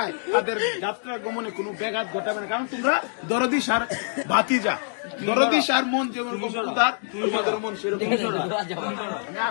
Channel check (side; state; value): right; silent; digital silence